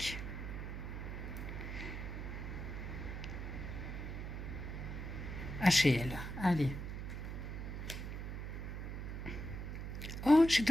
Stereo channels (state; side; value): noise; right; hum, 5 dB below the sound